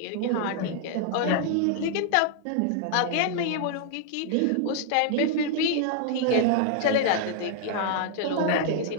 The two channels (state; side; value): different; both; correlation 0.00